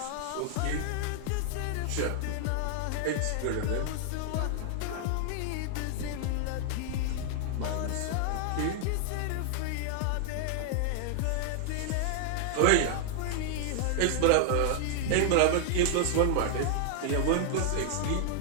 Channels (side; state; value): both; different; correlation -0.01